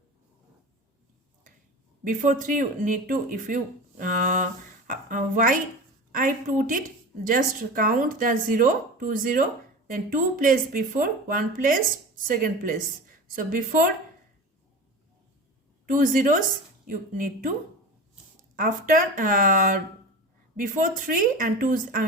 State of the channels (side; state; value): both; normal; correlation 0.31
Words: Before 3 you need to, if you why I put it, just count the 0, 2 0, then 2 place before, 1 place, second place. So before 2 zeros you need to, after before 3 and 2